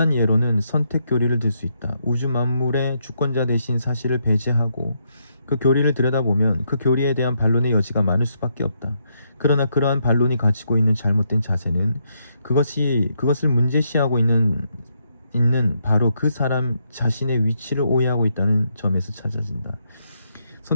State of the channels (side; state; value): both; inverted; correlation -0.77